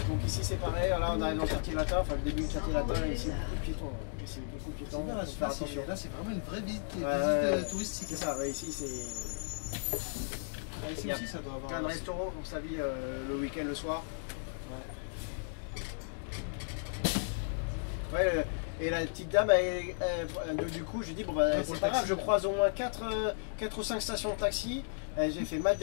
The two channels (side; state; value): right; silent; digital silence